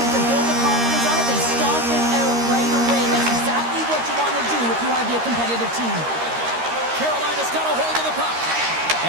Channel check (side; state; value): left; late; 13 ms